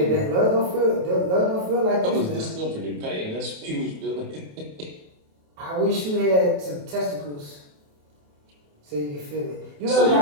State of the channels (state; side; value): late; left; 28 ms